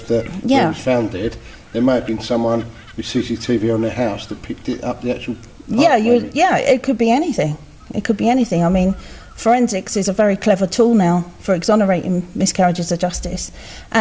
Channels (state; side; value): identical; both; correlation 1.00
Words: where it was found dead, there may have been someone with CCTV on their house that picked it up, the actual part, it could be anything. It could be anything. I mean, forensics is a very clever tool now for exonerating miscarriages of justice.